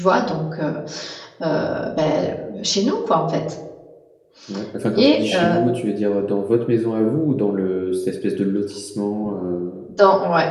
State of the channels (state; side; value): identical; both; correlation 1.00